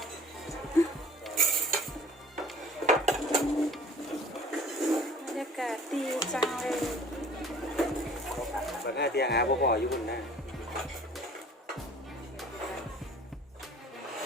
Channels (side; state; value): both; normal; correlation 0.49